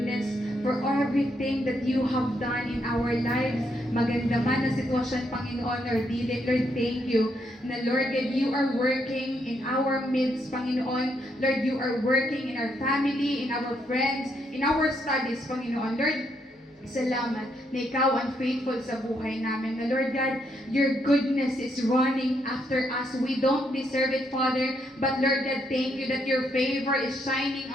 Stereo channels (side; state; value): both; normal; correlation 0.76